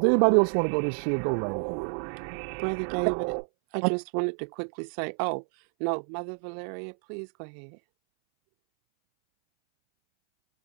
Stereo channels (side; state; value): left; silent; 59 dB below the other